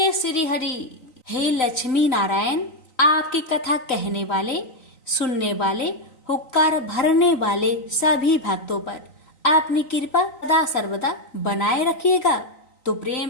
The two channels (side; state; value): right; late; 3.9 ms